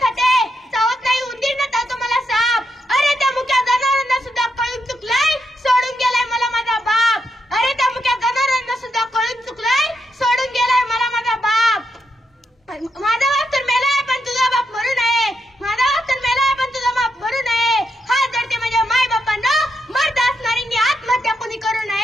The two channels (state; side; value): normal; both; correlation 0.82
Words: खाते, चावत नाही उंदीर न चावतो मला साप. अरे त्या मुक्या जनावरांना सुद्धा कळून चुकलाय, सोडून गेलाय मला माझा बाप. अरे त्या मुक्या जनावरांना सुद्धा कळून चुकलाय, सोडून गेलाय मला माझा बाप. माझा बाप तर मेलाय पण तुझा बाप मरू नये, माझा बाप तर मेलाय पण तुझा बाप मरू नये. हात जडते माझ्या माय बापांना, मर्द असणाऱ्यांनी आत्महत्या कोणी करू